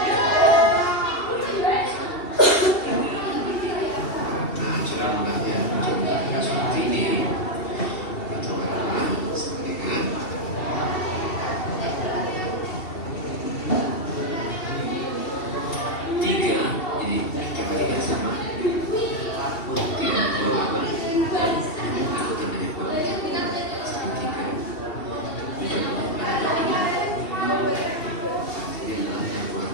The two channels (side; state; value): right; late; 2.7 ms